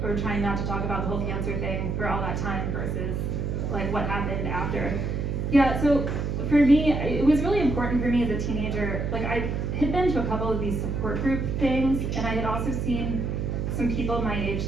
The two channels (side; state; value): right; noise; hum, 1 dB below the sound